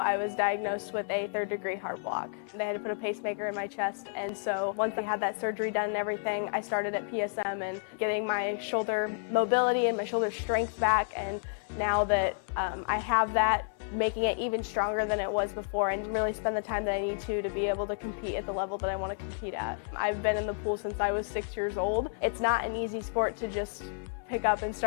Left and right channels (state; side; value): silent; right; 57 dB below the other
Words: was diagnosed with a third-degree heart block. They had to put a pacemaker in my chest, and so once I had that surgery done and everything, I started at PSM and getting my shoulder mobility and my shoulder strength back, and now that I have that, making it even stronger than it was before and really spend the time that I need to be able to compete at the level that I want to compete at. I've been in the pool since I was 6 years old. It's not an easy sport to just pick up and